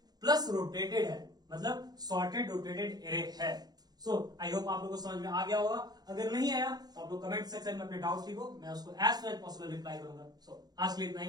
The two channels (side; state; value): left; late; 0.19 ms